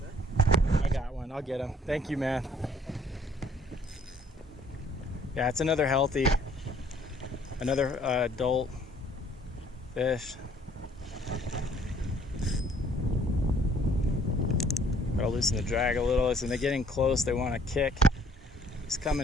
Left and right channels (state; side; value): normal; both; correlation 0.61